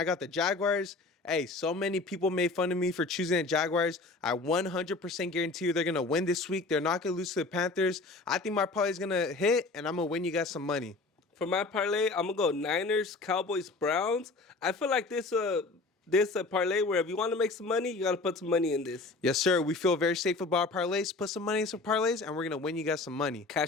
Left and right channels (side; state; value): right; quieter; 3.5 dB